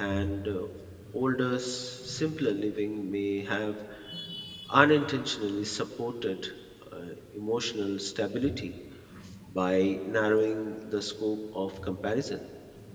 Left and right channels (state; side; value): identical; both; correlation 1.00